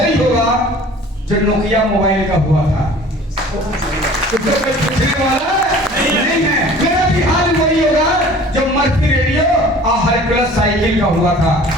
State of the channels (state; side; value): normal; both; correlation 0.47